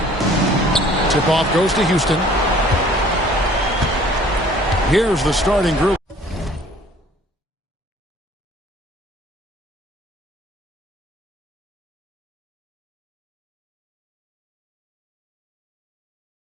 Tip-off goes to Houston. Here's the starting group.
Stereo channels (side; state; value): both; normal; correlation 0.54